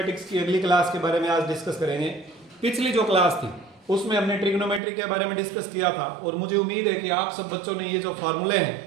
की अगली क्लास के बारे में आज डिस्कस करेंगे। पिछली जो क्लास थी उसमें हमने ट्रिग्नोमेट्री के बारे में डिस्कस किया था, और मुझे उम्मीद है कि आप सब बच्चों ने ये जो फार्मूले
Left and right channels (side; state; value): left; drops out; at 4.8 s